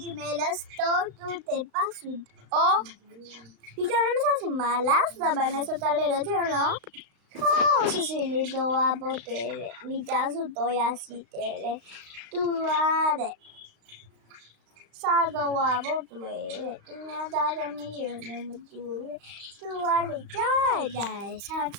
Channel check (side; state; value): left; late; 34 ms